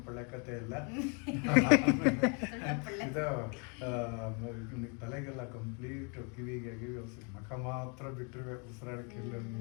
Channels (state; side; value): quieter; right; 35.8 dB